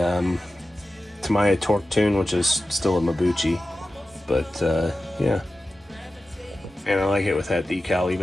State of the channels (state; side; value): normal; both; correlation 0.94